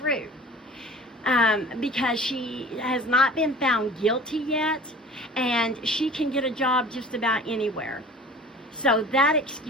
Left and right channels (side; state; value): both; normal; correlation 0.43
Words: because she has not been found guilty yet, and she can get a job just about anywhere. So that